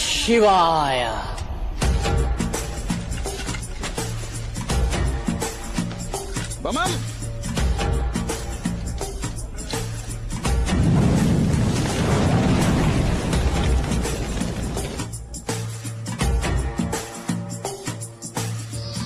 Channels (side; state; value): both; identical; correlation 1.00